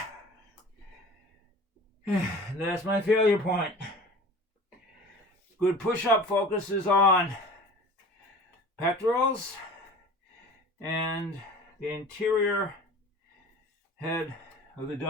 That's my failure point. Good push-up focuses on pectorals and the interior head of the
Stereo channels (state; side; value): normal; both; correlation 0.40